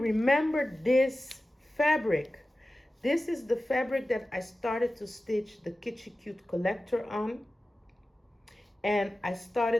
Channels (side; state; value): both; normal; correlation 0.95